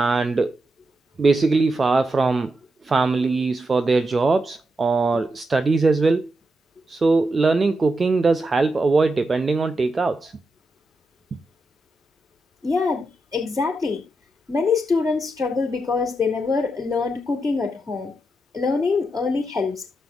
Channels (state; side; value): normal; both; correlation 0.86